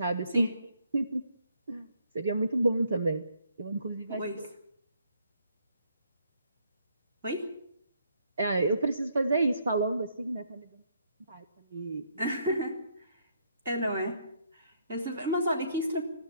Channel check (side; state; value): both; inverted; correlation -0.71